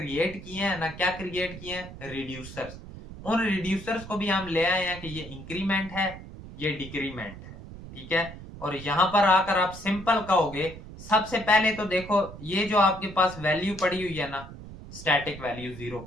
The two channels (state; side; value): noise; right; rumble, 14 dB below the sound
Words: किए हैं ना, क्या क्रिएट किए हैं, रिड्यूसर्स। उन रिड्यूसर्स को भी हम ले आए हैं कि ये इंक्रीमेंट है, ये डिक्रीमेंट है। ठीक है, और यहां पर आकर आप सिंपल कहोगे, सबसे पहले तो देखो ये जो आपके पास वैल्यू पड़ी हुई है ना, स्टैटिक वैल्यू 0,